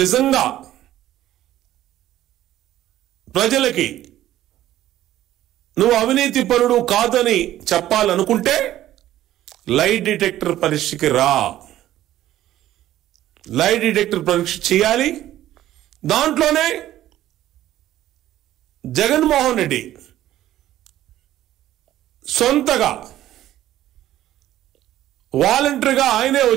నిజంగా ప్రజలకి నువ్వు అవినీతి పరుడు కాదని చెప్పాలనుకుంటే లై డిటెక్టర్ పరీక్షకి రా. లై డిటెక్టర్ పరీక్ష చేయాలి. దాంట్లోనే జగన్మోహన్ రెడ్డి సొంతగా వాలంటరీగా ఆయనే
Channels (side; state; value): left; quieter; 13.5 dB